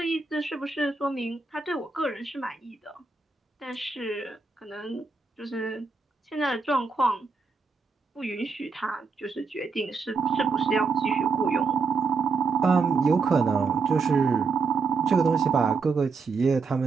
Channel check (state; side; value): quieter; left; 4.7 dB